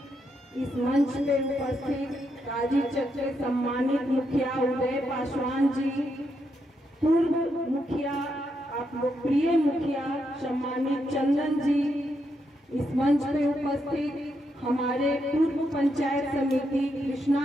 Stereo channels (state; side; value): normal; both; correlation 0.81